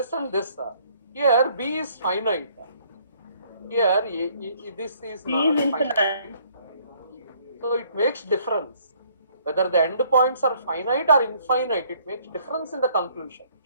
and this? Here B is finite. Here this is B not is finite. infinite. So it makes difference. Whether the endpoints are finite or infinite, it makes difference in the conclusion.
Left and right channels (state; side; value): inverted; both; correlation -0.62